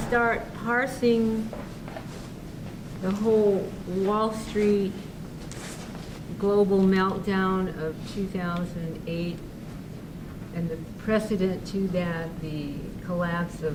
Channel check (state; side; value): identical; both; correlation 1.00